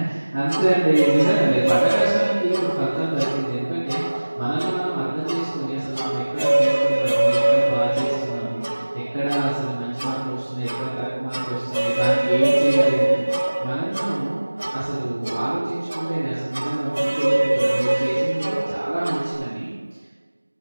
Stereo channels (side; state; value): both; inverted; correlation -1.00